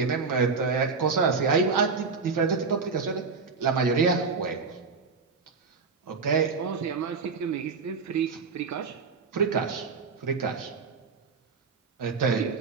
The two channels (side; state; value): left; quieter; 4.9 dB